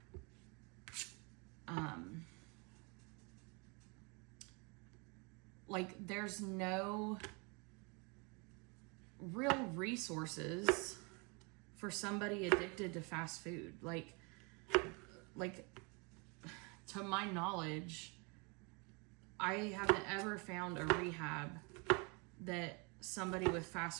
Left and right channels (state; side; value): quieter; left; 31.3 dB